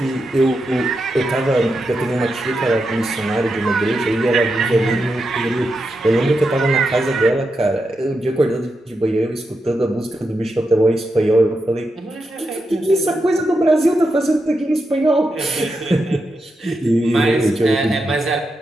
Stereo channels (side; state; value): both; normal; correlation 0.86